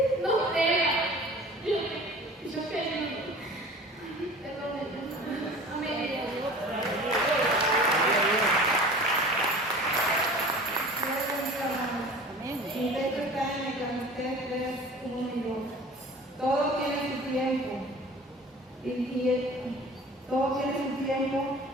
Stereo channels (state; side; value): normal; both; correlation 0.42